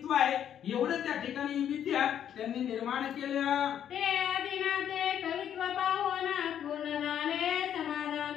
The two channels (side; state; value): right; quieter; 9.7 dB